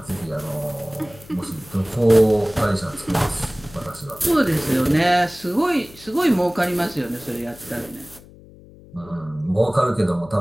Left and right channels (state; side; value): noise; left; hum, 22 dB below the sound